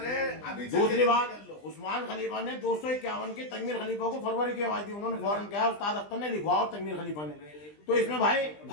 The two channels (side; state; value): right; late; 20 ms